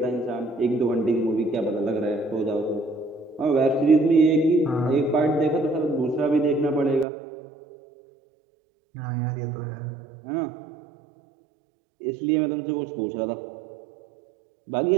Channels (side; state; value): left; drops out; at 7.1 s